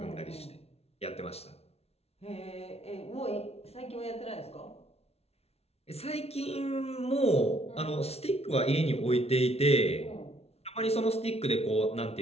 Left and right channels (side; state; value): right; late; 0.30 ms